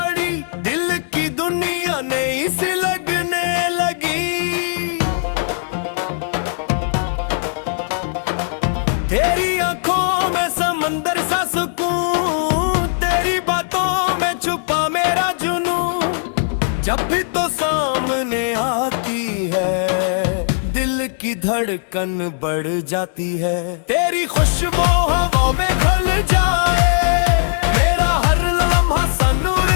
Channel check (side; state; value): right; silent; digital silence